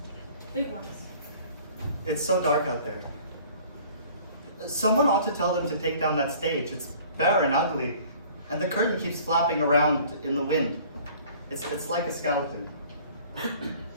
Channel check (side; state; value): both; inverted; correlation -0.51